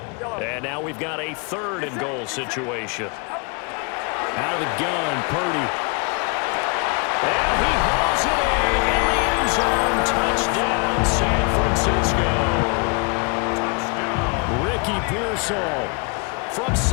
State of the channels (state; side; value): quieter; right; 33.2 dB